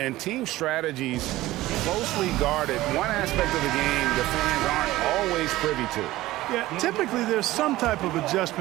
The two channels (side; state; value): left; quieter; 16.9 dB